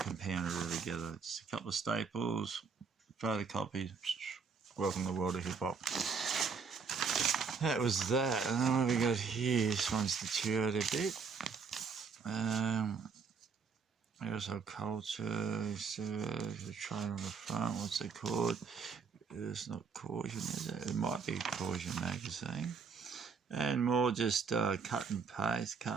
it all together. Just a couple of staples, photocopies. Welcome to the world of hip hop. That was that. And then what we got here, this one's deteriorated a bit. Household culture, so the train on the front, what's it called? It's not Caution, is it? It might be Caution magazine. And more just cut and paste.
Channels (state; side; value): quieter; left; 5.4 dB